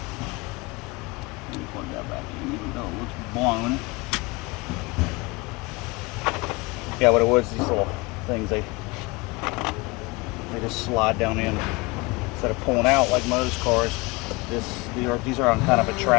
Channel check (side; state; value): right; quieter; 25.3 dB